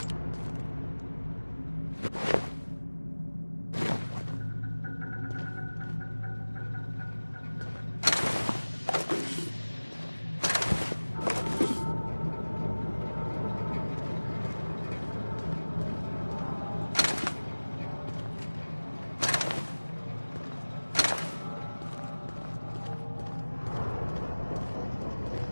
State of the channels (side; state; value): both; inverted; correlation -1.00